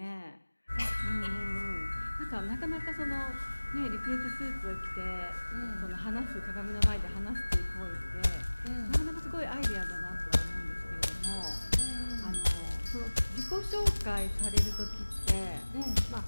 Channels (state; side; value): inverted; both; correlation -1.00